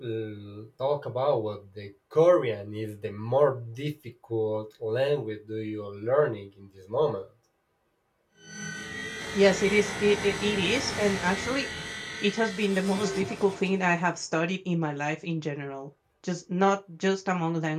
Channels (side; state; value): both; identical; correlation 1.00